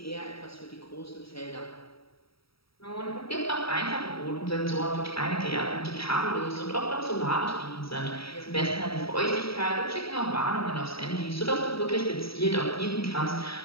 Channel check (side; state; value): right; late; 0.75 ms